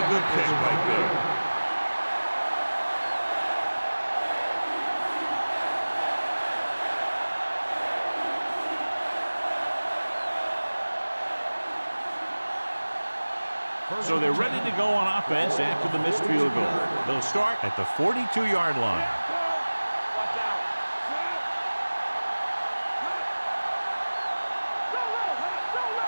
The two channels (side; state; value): both; inverted; correlation -1.00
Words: good pick right there. So they're ready to go on offense after the missed field goal. They'll start at the 42-yard line. Watch out.